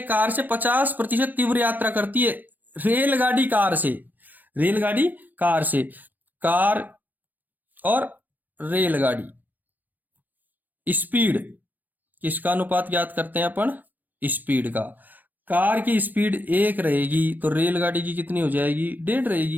कार से 50% तीव्र यात्रा करती है। रेलगाड़ी कार से कार और रेलगाड़ी स्पीड, किसका अनुपात ज्ञात करते हैं अपन? स्पीड का। कार की स्पीड 1 रहेगी तो रेलगाड़ी की कितनी हो जाएगी? 1.5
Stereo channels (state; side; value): late; left; 0.085 ms